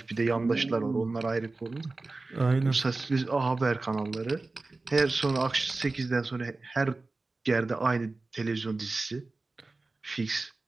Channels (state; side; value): quieter; left; 3.4 dB